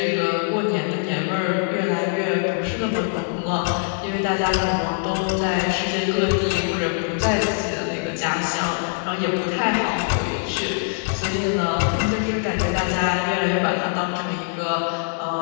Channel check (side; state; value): right; silent; digital silence